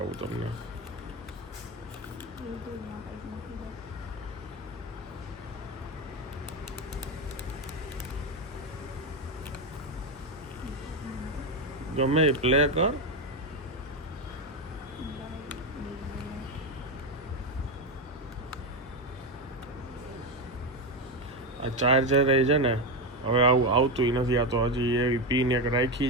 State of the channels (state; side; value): normal; both; correlation 0.12